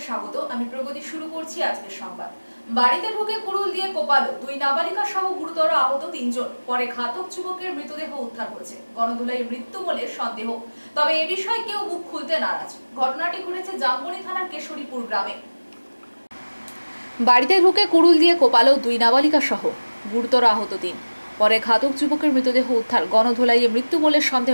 স্বাগত। আমি প্রগতি শুরু করছি আজকের সংবাদ। বাড়িতে ঢুকে কুড়ুল দিয়ে কোপালো দুই নাবালিকা সহ গুরুতর আহত তিনজন। পরে ঘাতক যুবকের মৃতদেহ উদ্ধার করেছে। গণধোলাই মৃত্যু বলে সন্দেহ, তবে এ বিষয়ে কেউ মুখ খুলতে নারাজ। ঘটনাটি ঘটেছে জামবনি থানার কেশরীপুর গ্রামে। বাড়িতে ঢুকে কুড়ুল দিয়ে কোপালো দুই নাবালিকা সহ গুরুতর আহত তিন। পরে ঘাতক যুবকের মৃতদেহ উদ্ধার। গণধোলাইয়ে মৃত্যু বলে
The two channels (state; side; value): inverted; both; correlation -1.00